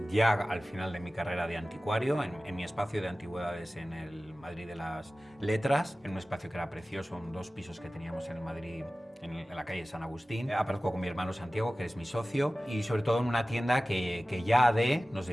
ya al final de mi carrera de anticuario, en mi espacio de antigüedades en el Madrid de las Letras, en un espacio que era precioso, 2 pisos que teníamos en el Madrid, en la calle San Agustín. Aparezco con mi hermano Santiago, que es mi socio, y sobre todo en una tienda que ya AD nos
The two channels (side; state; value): both; normal; correlation 0.96